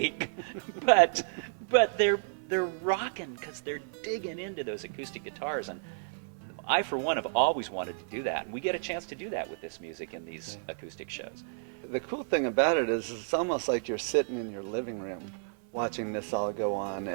but they're rocking because they're digging into those acoustic guitars. And I, for one, have always wanted to do that, and we get a chance to do that with this music in these acoustic shows. The cool thing about it is it's almost like you're sitting in your living room watching this all go on.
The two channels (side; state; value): left; silent; 57 dB below the other